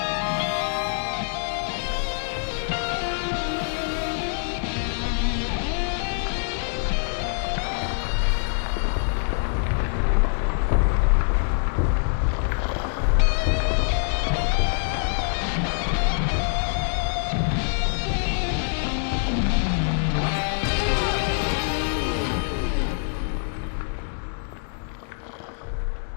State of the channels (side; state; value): right; silent; digital silence